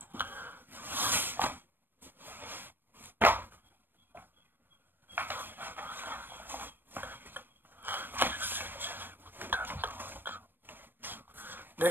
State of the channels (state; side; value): late; left; 0.095 ms